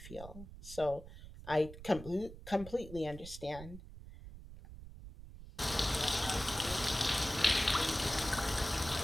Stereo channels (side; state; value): right; noise; rumble, 14 dB below the sound